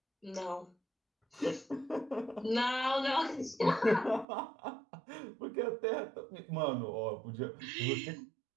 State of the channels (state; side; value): drops out; left; at 4.2 s